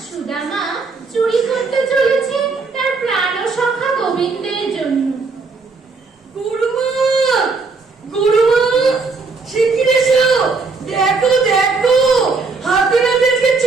সুদামা চুরি করতে চলেছে তার প্রাণ সখা গোবিন্দের জন্য। গুরুমা, গুরুমা, শিগগির এসো, দেখো দেখো, হাতে নাতে আজকে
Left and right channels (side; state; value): left; quieter; 4.3 dB